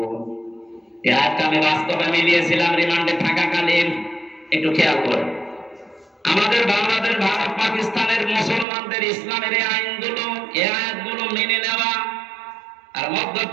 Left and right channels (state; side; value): drops out; left; at 8.7 s